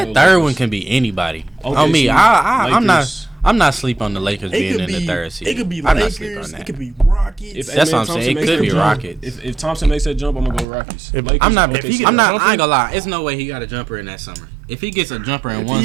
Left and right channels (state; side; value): drops out; left; at 10.7 s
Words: gonna go third Lakers. one can be anybody. OKC, On me, I'm Lakers. not sleep on the Lakers It being could in be. the third seed. It could be I'm not sleep on Lakers. that. It could be Rockets. If That's what I'm Thompson saying. It makes could that be jump, Rockets. If Thompson makes that jump, I'm gonna go Rockets. If- Lakers, I'm not. If he OKC. get I'm not. jumper- I ain't gonna lie. It's no way he got a jumper in that summer. If he gets a jumper in If one